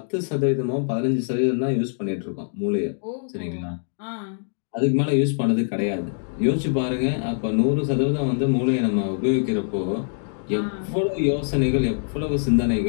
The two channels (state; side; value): silent; right; digital silence